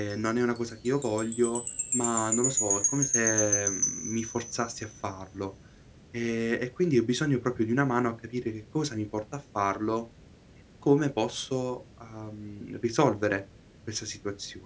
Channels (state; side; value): identical; both; correlation 1.00